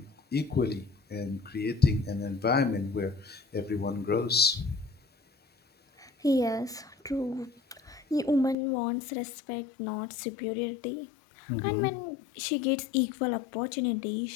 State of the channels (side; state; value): right; drops out; at 8.6 s